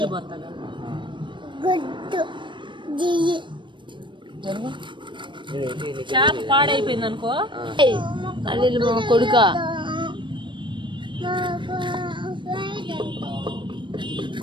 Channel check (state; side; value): late; left; 0.23 ms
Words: పోతాడు. చేప పాడైపోయింది అనుకో, అల్లి మా కొడుక.